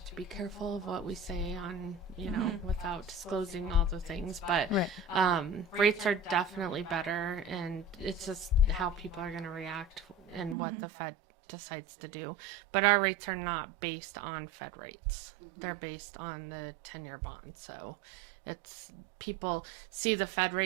to be careful of what we say on, without disclosing all the things. But rates are definitely better, and it's just how people are going to react and what the Fed decides to do. But our rates are not based on Fed rates. They're based on the 10-year bond. So it's, people see the Fed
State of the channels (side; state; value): left; drops out; at 10.6 s